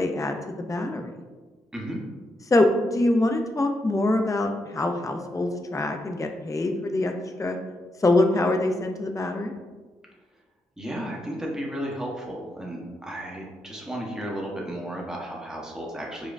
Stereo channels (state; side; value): normal; both; correlation 0.83